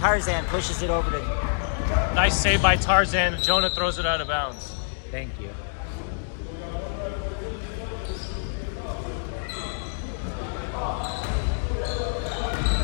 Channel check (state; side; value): silent; right; digital silence